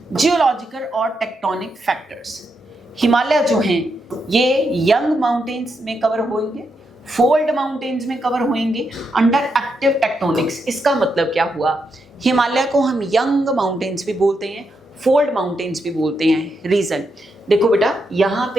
जियोलॉजिकल और टेक्टोनिक फैक्टर्स। हिमालय जो हैं ये यंग माउंटेन्स में कवर होंगे, फोल्ड माउंटेन्स में कवर होंगे अंडर एक्टिव टेक्टोनिक्स। इसका मतलब क्या हुआ? हिमालय को हम यंग माउंटेन्स भी बोलते हैं, फोल्ड माउंटेन्स भी बोलते हैं। रीजन देखो बेटा, यहाँ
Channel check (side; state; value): both; normal; correlation 0.82